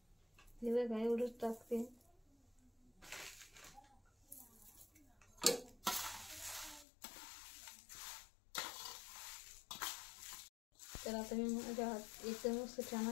हे बघा एवढंच टाकते. तर आता मी माझ्या हात एकदम मस्त छान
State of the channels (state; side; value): drops out; right; at 6.9 s